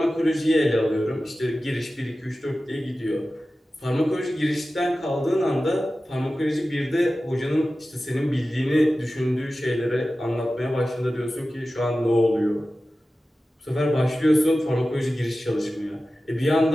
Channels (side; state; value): both; normal; correlation 0.95